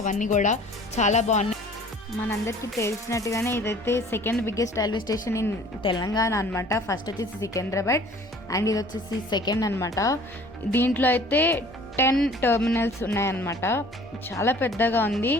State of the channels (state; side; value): normal; both; correlation 0.50